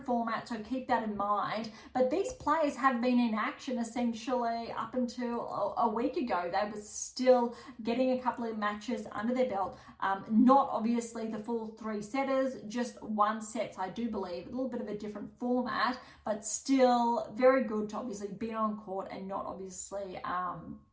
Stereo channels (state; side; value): identical; both; correlation 1.00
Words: format, so keep that in mind. But these players have been in action essentially up until a week ago. They were still getting a couple of matches under their belt. Not obviously the full 3 setters, just 1 sets, I do believe. A little bit of a different format, but still very good to obviously be on court and not obviously